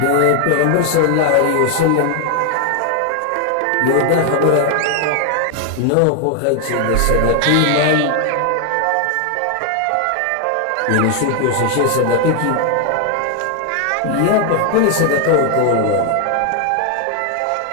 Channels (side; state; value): both; different; correlation 0.00